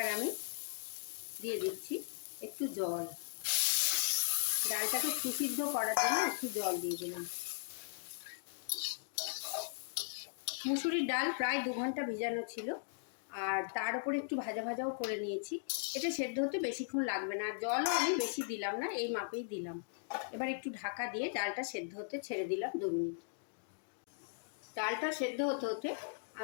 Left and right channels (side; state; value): right; silent; digital silence